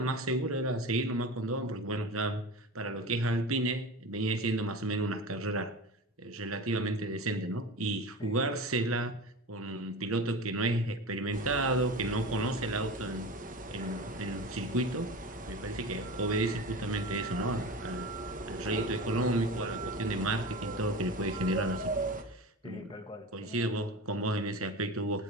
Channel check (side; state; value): both; normal; correlation 0.30